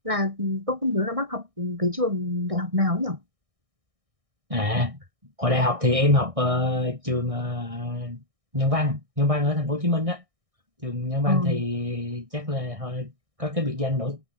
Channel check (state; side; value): late; left; 1.6 ms